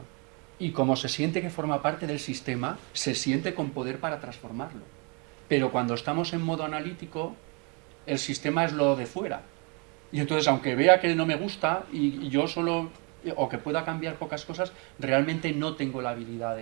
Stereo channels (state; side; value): quieter; left; 33.4 dB